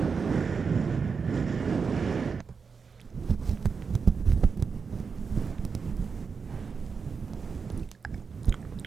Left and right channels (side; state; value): left; quieter; 5.4 dB